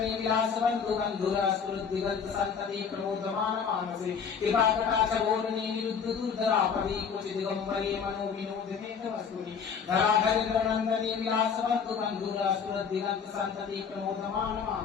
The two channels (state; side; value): quieter; right; 6.6 dB